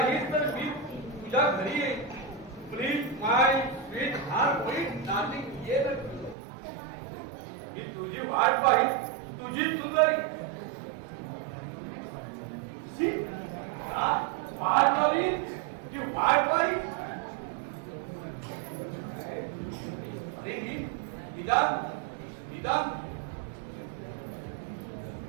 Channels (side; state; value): left; drops out; at 6.4 s